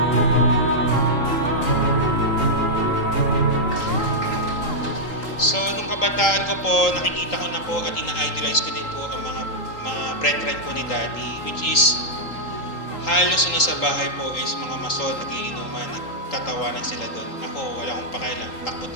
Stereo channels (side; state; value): right; late; 3.8 ms